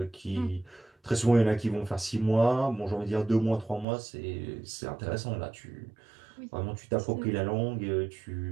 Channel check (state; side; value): drops out; left; at 3.9 s